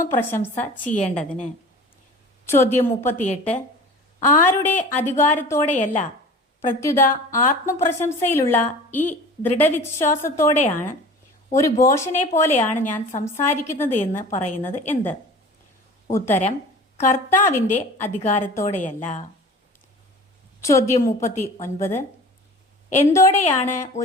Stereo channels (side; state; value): both; normal; correlation 0.40